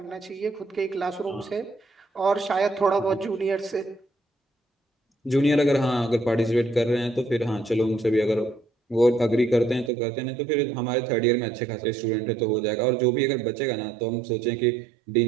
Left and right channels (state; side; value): drops out; left; at 9.9 s